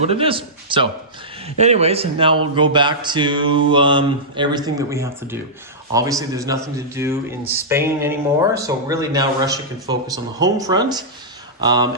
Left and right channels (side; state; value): both; normal; correlation -0.14